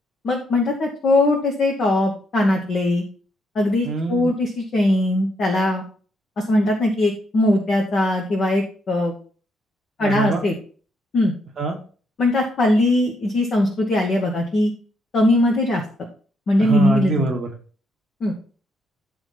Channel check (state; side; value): normal; both; correlation 0.76